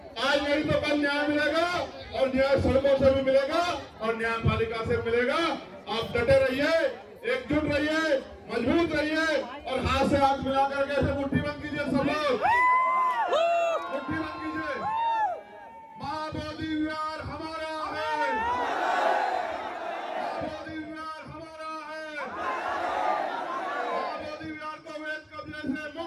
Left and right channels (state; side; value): identical; both; correlation 1.00